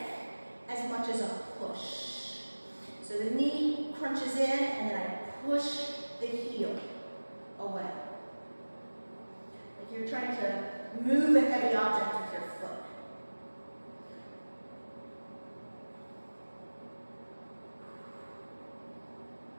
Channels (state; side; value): inverted; both; correlation -1.00